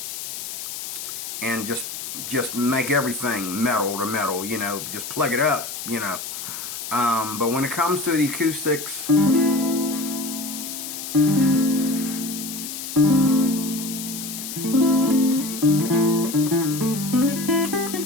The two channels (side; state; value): left; noise; hiss, 7 dB below the sound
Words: just make everything metal to metal, you know, just plug it up, you know. But when it comes to the acoustics,